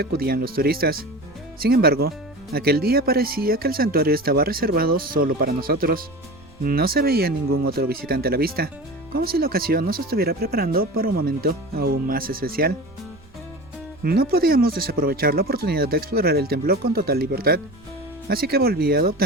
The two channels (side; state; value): right; noise; rumble, 25 dB below the sound